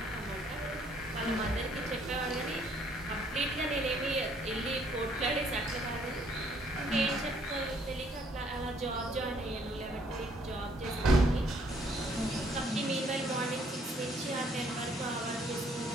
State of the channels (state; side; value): normal; both; correlation 0.65